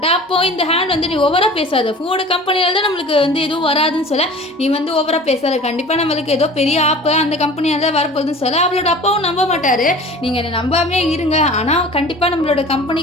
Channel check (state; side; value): normal; both; correlation 0.42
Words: அப்போ இந்த ஹேண்ட் வந்து நீ ஓவராக பேசாத, ஃபுட் கம்பெனியால் தான் நம்மளுக்கு வந்து எதுவும் வராதுன்னு சொல்ல, நீ வந்து ஓவராக பேசாத, கண்டிப்பாக நம்மளுக்கு ஏதோ பெரிய ஆப்பு அந்த கம்பெனியால் தான் வரப்போகுதுன்னு சொல்ல, அவளோட அப்பாவும் நம்ப மாட்டார், நீங்கள் என்னை நம்பாமே இருங்க, ஆனால் கண்டிப்பாக நம்மளோட